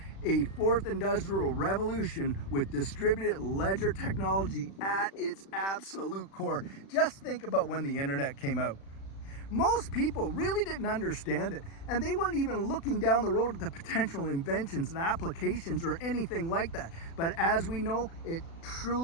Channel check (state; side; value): late; right; 36 ms